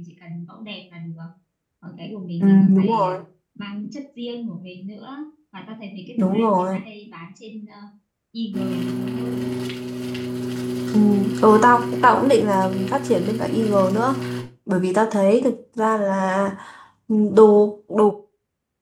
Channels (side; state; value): both; identical; correlation 1.00